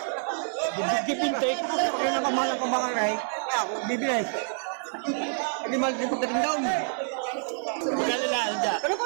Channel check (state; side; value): silent; left; 60 dB below the other